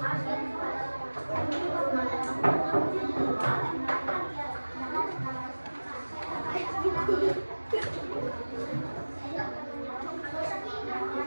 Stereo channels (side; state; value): both; inverted; correlation -1.00